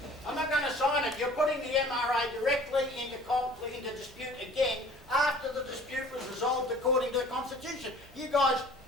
I'm not going to sign it. You're putting the MRA directly into conflict, into dispute again after the dispute was resolved according to the Constitution. You guys,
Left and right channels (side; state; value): both; normal; correlation 0.49